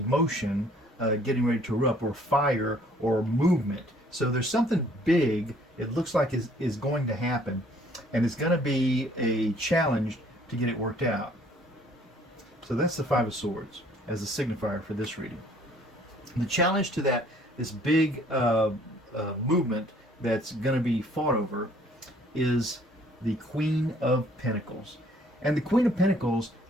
getting ready to erupt, or fire, or movement. So there's something big, it looks like is going to happen, and it's going to be a challenge to get it worked out. So that's the Five of Swords as a signifier for this reading. The challenge to that, this big movement that's going to be fought over, is the Queen of Pentacles. And the Queen of Pentacles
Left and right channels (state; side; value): normal; both; correlation 0.59